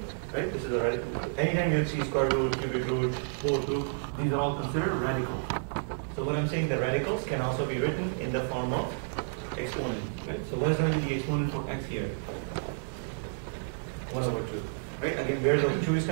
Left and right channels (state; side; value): silent; left; 58 dB below the other